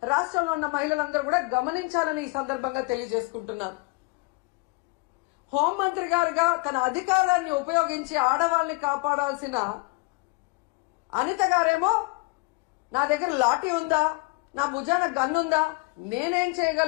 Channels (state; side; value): quieter; right; 26.9 dB